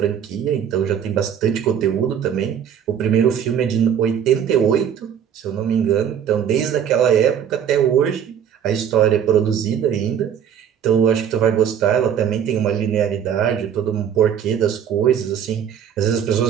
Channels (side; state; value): left; quieter; 8.7 dB